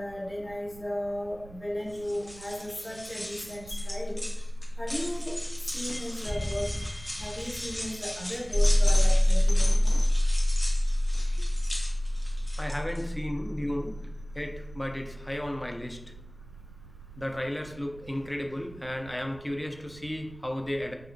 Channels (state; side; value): noise; right; rumble, 19 dB below the sound